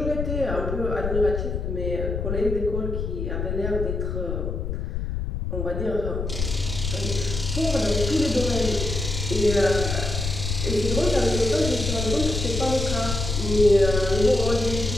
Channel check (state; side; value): noise; left; rumble, 3 dB below the sound